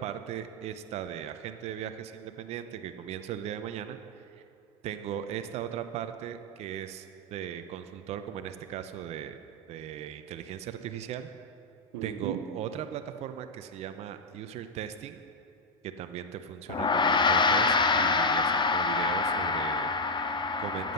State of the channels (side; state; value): both; normal; correlation -0.03